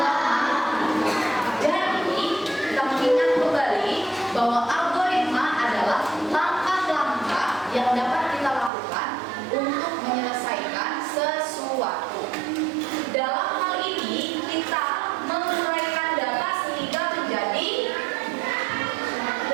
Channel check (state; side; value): drops out; left; at 8.7 s